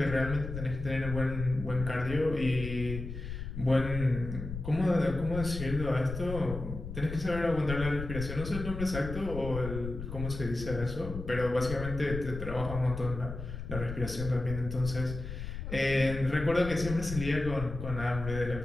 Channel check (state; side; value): noise; left; rumble, 7 dB below the sound